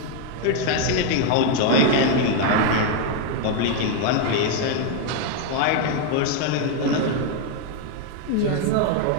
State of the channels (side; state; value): both; different; correlation 0.01